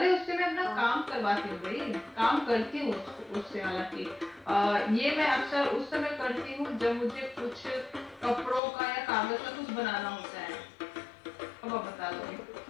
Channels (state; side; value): drops out; right; at 8.6 s